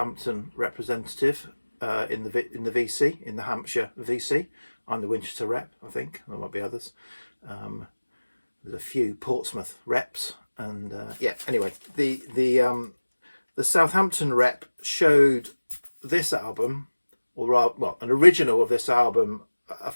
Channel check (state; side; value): inverted; both; correlation -1.00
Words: representative in the VC, in the Hampshire VC. I'm the Winchester rep, I think. There might be others. There's a few Portsmouth reps, and yeah. Anyway, the Southampton rep showed this album, or rather, well, an original of this album a